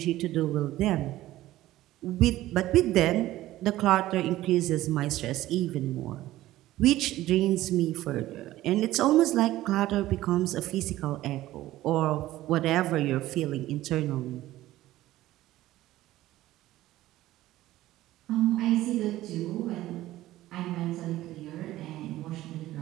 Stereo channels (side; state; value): left; quieter; 15.5 dB